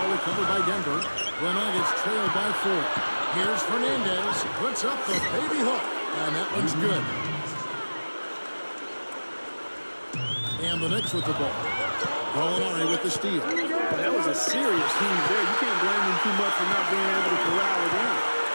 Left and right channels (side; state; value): both; inverted; correlation -1.00